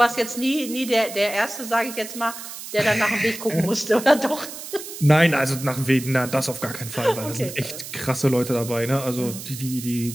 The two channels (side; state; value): right; noise; hiss, 11 dB below the sound